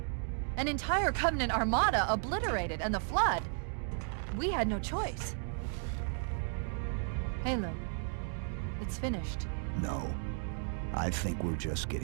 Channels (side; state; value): left; silent; 55 dB below the other